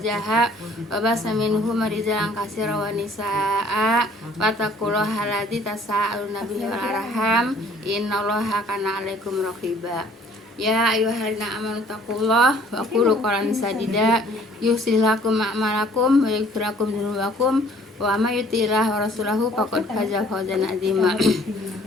wa basa minhuma rijalan katsiran wa nisaa wattaqullaha alladzi tasaaluna bihi wal arham innallaha kana 'alaikum raqiba. Ya ayyuhalladzina amanu taqullaha wa qulu qawlan sadida yuslih lakum a'malakum wa yaghfir lakum dzunubakum wa may yuti'illah wa rasulahu faqad faza fawzan 'azima.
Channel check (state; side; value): normal; both; correlation 0.56